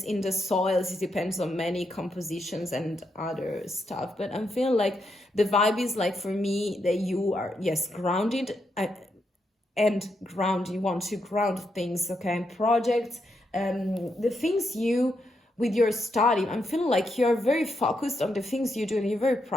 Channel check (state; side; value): normal; both; correlation 0.81